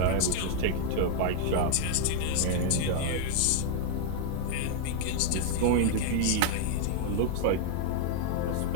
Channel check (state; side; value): different; both; correlation 0.00